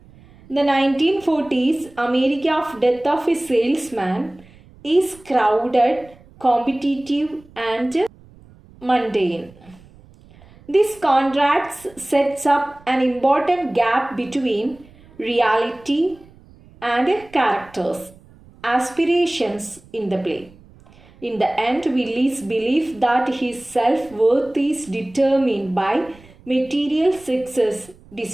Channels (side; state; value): right; noise; rumble, 25 dB below the sound